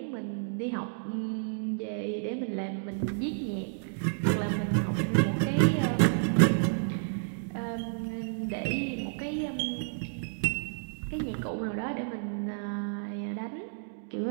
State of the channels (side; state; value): left; silent; digital silence